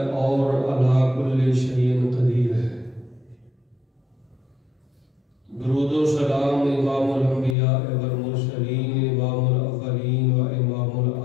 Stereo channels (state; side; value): drops out; right; at 7.6 s